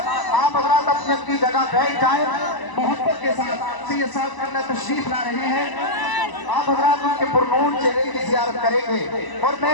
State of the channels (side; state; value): right; late; 1.0 ms